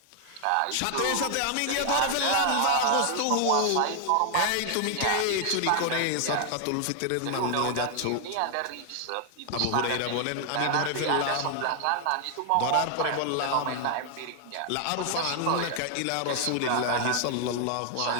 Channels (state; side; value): different; both; correlation 0.00